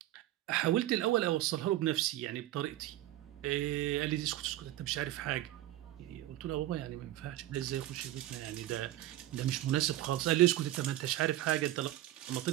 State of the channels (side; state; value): left; quieter; 14.5 dB